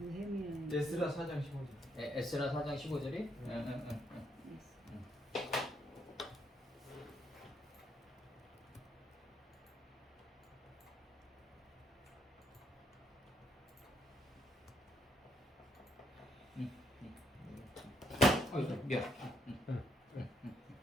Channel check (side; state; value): both; normal; correlation 0.73